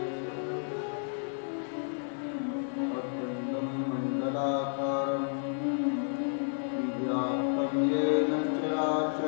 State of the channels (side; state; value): right; silent; 57 dB below the other